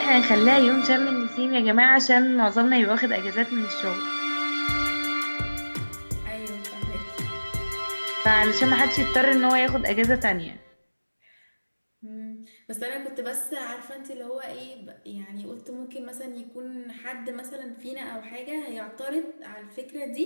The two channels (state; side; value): inverted; both; correlation -1.00